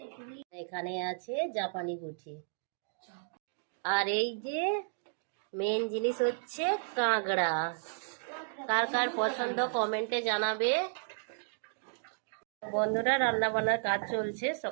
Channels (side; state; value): left; silent; digital silence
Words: এখানে আছে জাপানি পুঁটি, আর এই যে মেন জিনিস হচ্ছে কাঁকড়া। কার কার পছন্দ কমেন্টে জানাবে। বন্ধুরা রান্না বান্নার কাজ চলছে।